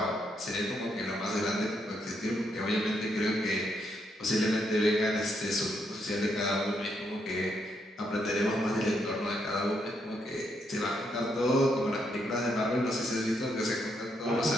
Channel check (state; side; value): normal; both; correlation 0.77